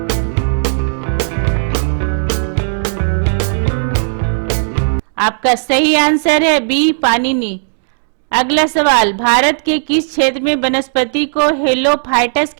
आपका सही आंसर है बी पाणिनि। अगला सवाल, भारत के किस क्षेत्र में वनस्पति को हेलोफाइटस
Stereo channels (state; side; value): silent; left; digital silence